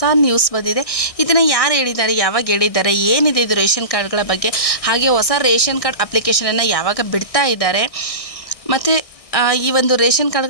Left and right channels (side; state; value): right; late; 1.6 ms